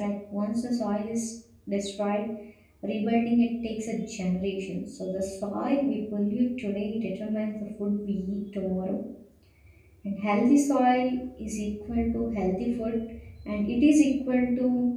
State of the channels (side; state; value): both; identical; correlation 1.00